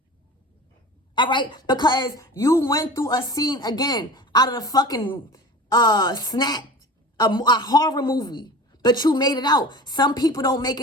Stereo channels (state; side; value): normal; both; correlation 0.37